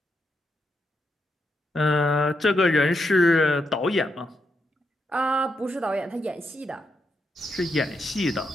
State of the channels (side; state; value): both; normal; correlation 0.82